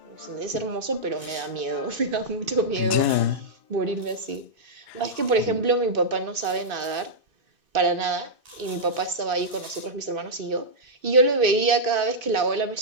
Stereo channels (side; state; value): left; late; 2.5 ms